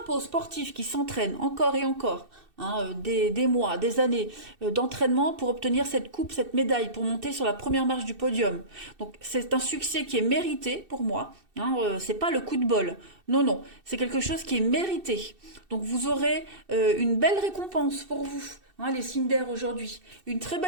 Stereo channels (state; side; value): late; left; 2.6 ms